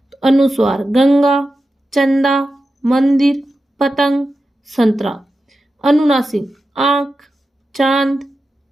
तो अनुस्वार, गंगा, चंदा, मंदिर, पतंग, संतरा। अनुनासिक, आंख, चांद,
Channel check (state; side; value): normal; both; correlation 0.91